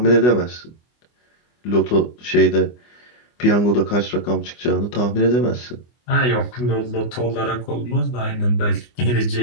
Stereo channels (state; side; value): late; right; 24 ms